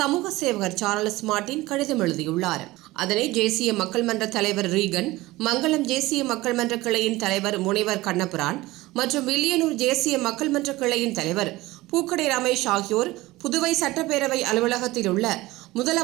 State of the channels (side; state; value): left; quieter; 19.1 dB